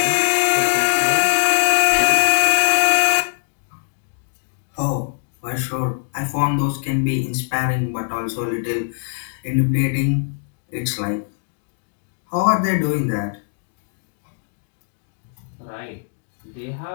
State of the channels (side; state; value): right; silent; digital silence